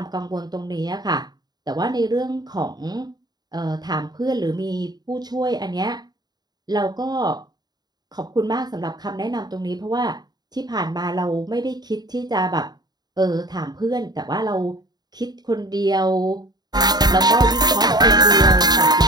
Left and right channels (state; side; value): late; left; 0.20 ms